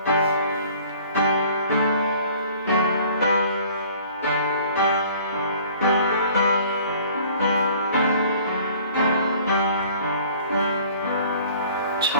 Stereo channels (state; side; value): inverted; both; correlation -0.51